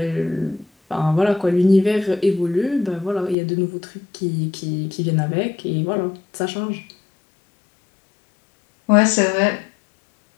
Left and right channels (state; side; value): drops out; right; at 3.4 s